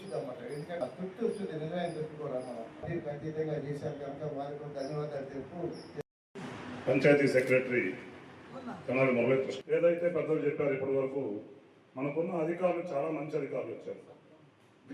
అన్నమాట. ఎందుకంటే తృప్తి వచ్చింది, నిజమైన తృప్తి కూడా మనం ఖచ్చితంగా చేశారు కనుక వారికి కూడా ధన్యవాదాలు తెలుపు. పంచాయతీ సెక్రటరీ తెనాలి మురళీకృష్ణ ఏదైతే పెద్దలు చెప్పారు, ఇప్పటి వరకు మనకున్న అధికారులు చాలా మంచి అధికారులు వచ్చారు.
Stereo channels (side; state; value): both; identical; correlation 1.00